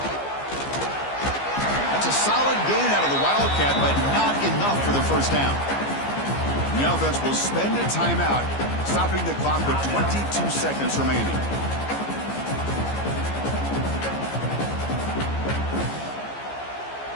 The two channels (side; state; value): right; late; 15 ms